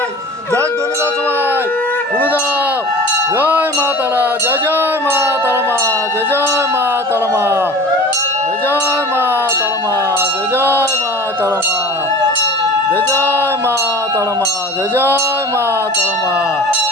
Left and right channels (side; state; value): both; normal; correlation 0.40